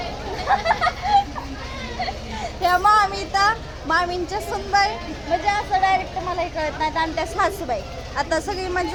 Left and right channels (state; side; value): identical; both; correlation 1.00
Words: ह्या मामींच्या सुनबाई म्हणजे असं डायरेक्ट मला हे कळत नाही. आणि त्या सासूबाई, आता सगळी